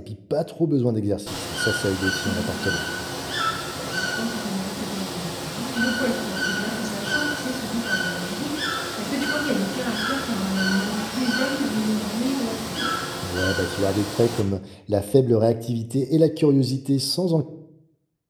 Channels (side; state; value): both; identical; correlation 1.00